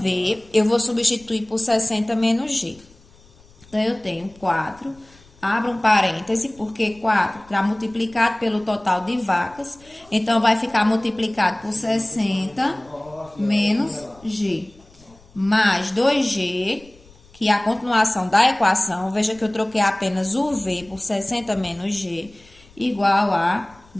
eu vou substituir por 60 menos G. Então, eu tenho 4, abro um parêntese, porque 4 está multiplicado pelo total de vacas. Então, vai ficar multiplicado por 60 menos G. Mais 2G, que é a continuação da equação. Veja que eu troquei apenas o V por 60 menos G, igual a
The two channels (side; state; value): left; noise; rumble, 27 dB below the sound